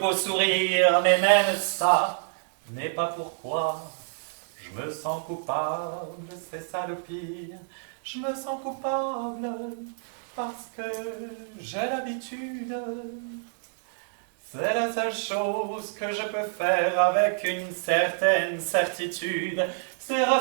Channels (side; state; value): left; silent; digital silence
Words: sourire, mais même ça n'est pas pourquoi je me sens coupable, c'est ça le pire. Je me sens coupable parce que j'ai l'habitude. C'est la seule chose que je peux faire avec une certaine certitude. C'est